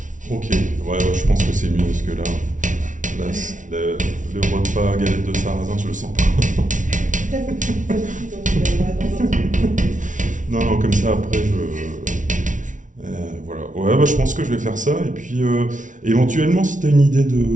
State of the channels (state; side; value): late; left; 0.37 ms